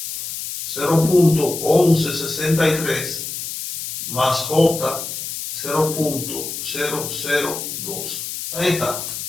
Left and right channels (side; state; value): left; noise; hiss, 6 dB below the sound